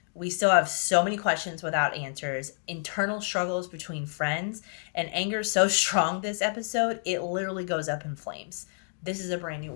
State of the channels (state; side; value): silent; right; 59 dB below the other